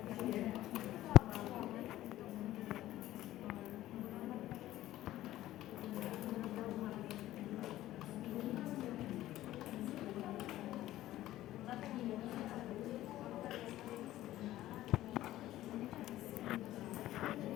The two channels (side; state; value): right; quieter; 14.7 dB